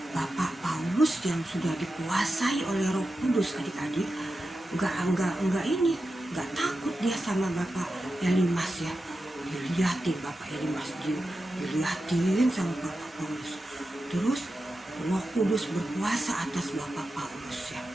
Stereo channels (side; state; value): both; normal; correlation 0.91